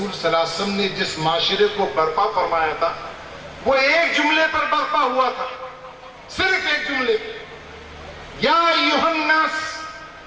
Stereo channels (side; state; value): both; identical; correlation 1.00